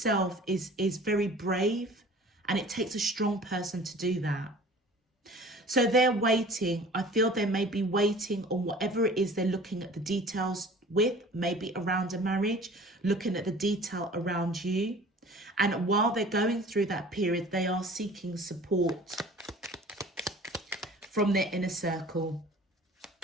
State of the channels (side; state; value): both; normal; correlation 0.45